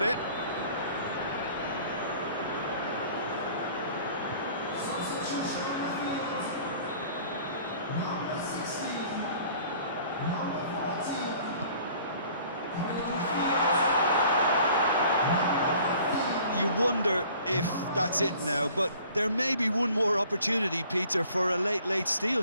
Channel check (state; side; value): inverted; both; correlation -0.51